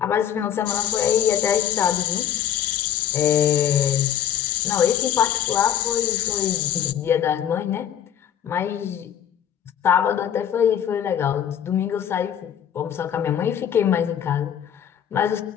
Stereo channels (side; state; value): right; quieter; 9.7 dB